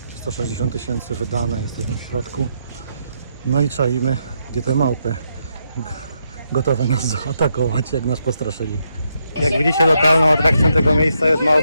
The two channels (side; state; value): both; inverted; correlation -0.79